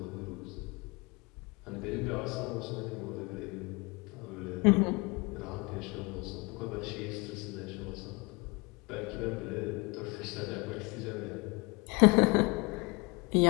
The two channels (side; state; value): right; quieter; 27.3 dB